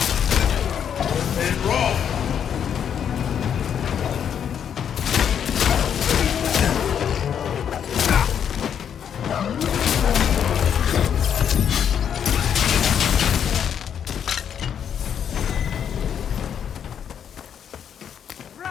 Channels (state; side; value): quieter; right; 8.4 dB